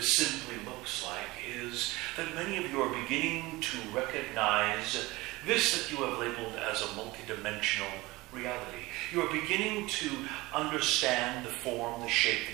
simply looks like is that many of you are beginning to recognize this that you have labeled as a multidimensional reality. You are beginning to understand the form, the shape,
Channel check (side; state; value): left; quieter; 20.9 dB